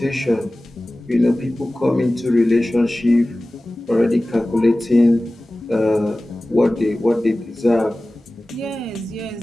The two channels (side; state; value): both; normal; correlation 0.97